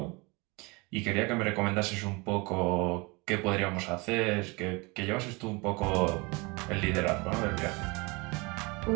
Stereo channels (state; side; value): quieter; left; 26.7 dB